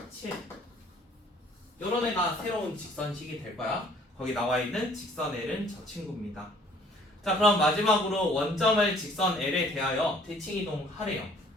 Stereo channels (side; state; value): both; normal; correlation 0.57